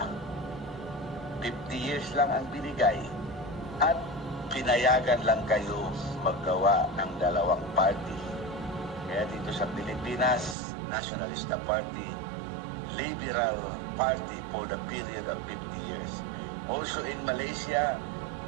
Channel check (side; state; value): left; drops out; at 10.6 s